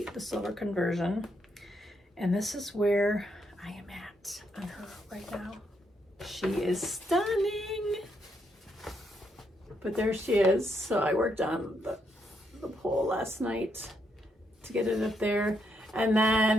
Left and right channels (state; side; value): normal; both; correlation 0.77